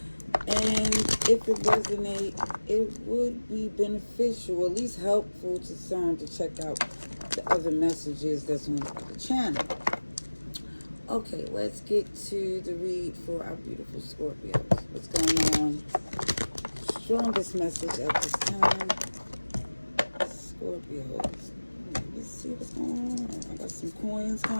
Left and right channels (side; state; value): both; inverted; correlation -1.00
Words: And if it resonates, it would be beneficial, at least helpful to some to check out the other messages that's on the channel. Okay, let's get to the read for our beautiful Scorpios. What's going on? Strongest message at this time. Scorpios. Let's see what's going on. I got some coins